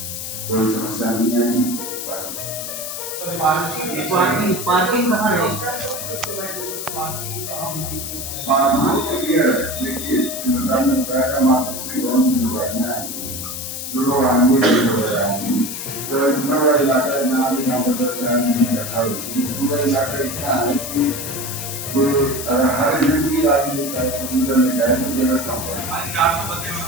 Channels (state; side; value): noise; left; hiss, 6 dB below the sound